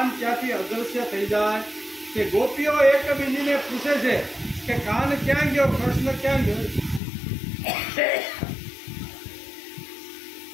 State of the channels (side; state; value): right; drops out; at 7.0 s